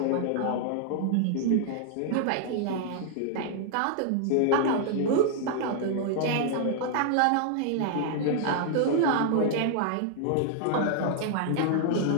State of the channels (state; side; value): different; both; correlation -0.01